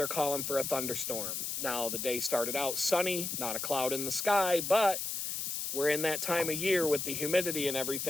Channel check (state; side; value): noise; left; hiss, 3 dB below the sound